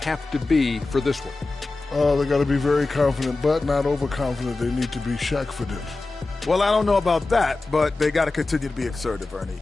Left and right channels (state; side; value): quieter; right; 3.4 dB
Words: to be for this one? They got to be very confident, but not overconfident. They need to be Shaq-fident. Well, I don't know about that, but they got to continue to be assertive, Ernie.